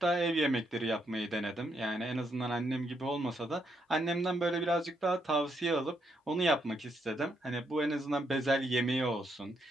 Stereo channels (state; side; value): normal; both; correlation 0.77